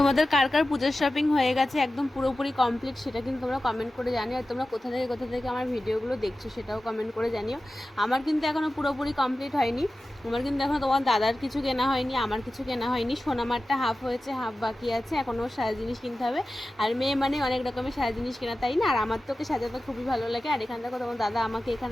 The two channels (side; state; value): both; normal; correlation 0.95